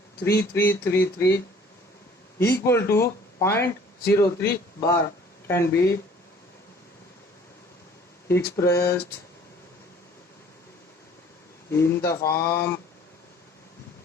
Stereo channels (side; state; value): both; normal; correlation 0.53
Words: equal to 0.03 bar can be expressed in the form